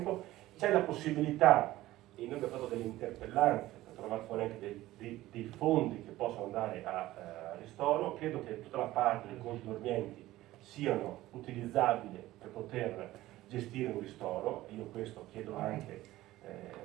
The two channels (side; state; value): left; quieter; 16.2 dB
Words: C'è la possibilità, e noi abbiamo fatto delle interpellanze per trovare fuori anche dei fondi che possono andare a ristoro. Credo che tutta la parte dei conti dormienti siano utilizzabili per poter gestire un ristoro. Io questo chiedo anche